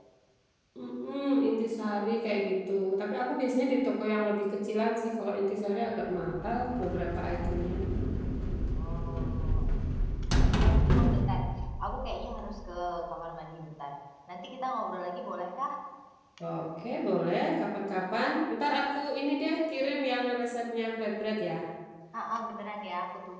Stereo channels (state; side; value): identical; both; correlation 1.00